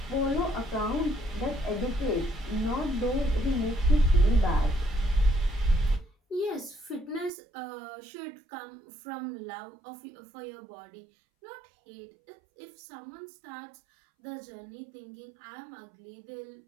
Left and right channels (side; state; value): left; drops out; at 7.3 s